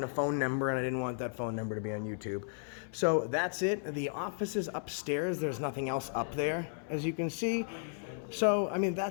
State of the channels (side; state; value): right; silent; 55 dB below the other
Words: a phone number, and I didn't want that phone number to be on YouTube. So that's it. The office is upstairs. There's nothing else up there, as you can see. So, I mean,